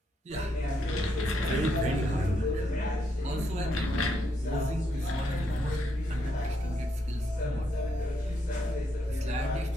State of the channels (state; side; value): normal; both; correlation 0.77